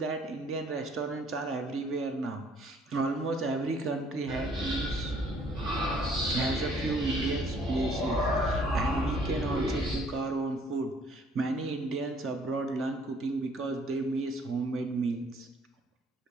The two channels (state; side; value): normal; both; correlation 0.61